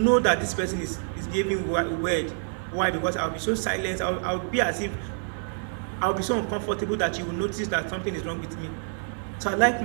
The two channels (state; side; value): silent; left; 60 dB below the other